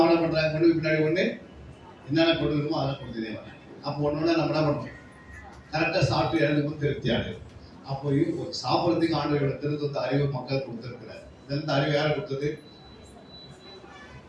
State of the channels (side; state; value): both; identical; correlation 1.00